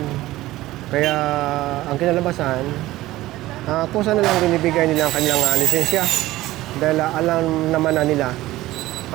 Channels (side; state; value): left; quieter; 16.8 dB